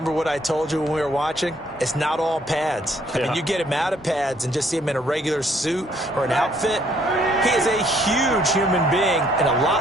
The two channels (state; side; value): normal; both; correlation 0.65